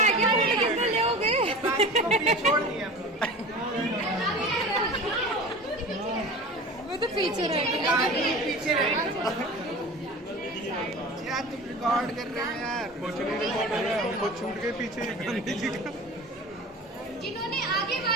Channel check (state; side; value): normal; both; correlation 0.36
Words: गया, कितने लोगे? छोड़ दिया। वो तो पीछे रह गया। पीछे यार, तुम रिकॉर्ड कर रहे हो यार। वो छूट गए पीछे गांधी जी का। जिन्होंने आगे